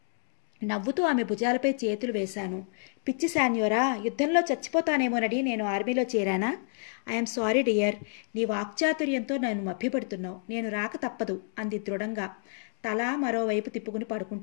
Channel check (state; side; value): silent; right; digital silence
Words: నవ్వుతూ ఆమె భుజాలపై చేతులు వేశాను. పిచ్చి శాన్యోరా, యుద్ధంలో చచ్చిపోతానేమోనని నేను ఆర్మీలో చేరానా? I'm sorry dear. నీ వాక్చాతుర్యంతో నన్ను మభ్యపెడుతున్నావు. నేను రాక తప్పదు అంది దృఢంగా, తల మరోవైపు తిప్పుకుని